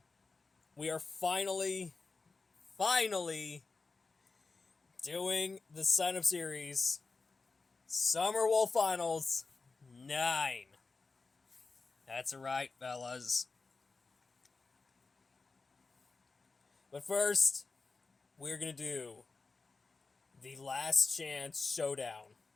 we are finally doing the sign up series Summer Wolf Finals 9. That's right, fellas. But first, we're gonna do the Last Chance Showdown.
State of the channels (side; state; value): right; quieter; 4.0 dB